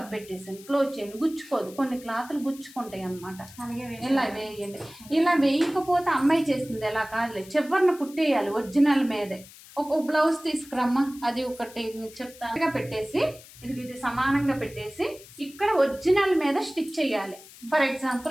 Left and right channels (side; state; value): left; noise; hiss, 20 dB below the sound